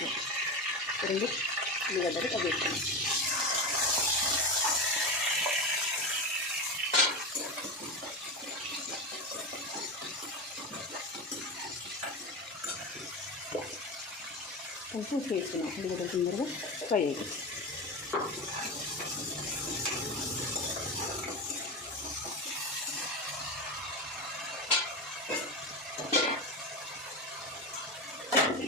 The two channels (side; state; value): both; normal; correlation 0.20